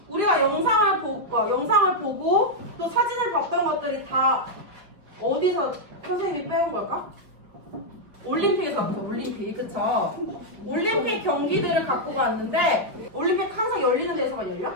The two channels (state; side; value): late; left; 5.0 ms